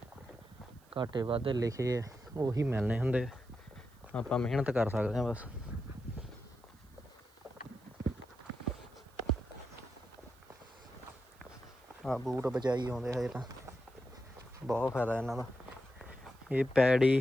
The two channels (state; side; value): noise; right; hiss, 30 dB below the sound